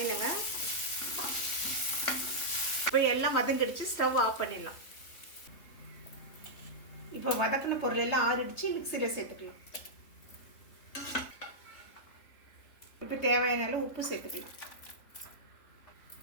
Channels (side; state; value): right; late; 3.5 ms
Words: இப்போ எல்லாம் வதங்கிடுச்சு. ஸ்டவ் ஆஃப் பண்ணிடலாம். இப்போ வதக்கின பொருள் எல்லாம் ஆறிடுச்சு. மிக்சியில் சேர்த்துக்கலாம். இப்போ தேவையான அளவு உப்பு சேர்த்துக்கலாம்.